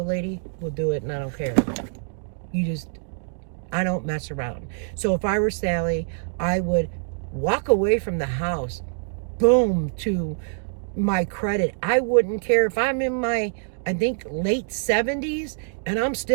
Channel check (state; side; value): silent; left; 62 dB below the other